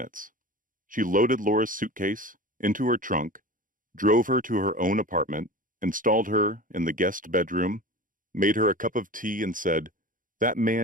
She loaded Laura's suitcase into her trunk, drove her to her own apartment, installed her in the guest bedroom, made her a cup of tea, and said, "That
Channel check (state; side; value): late; left; 0.39 ms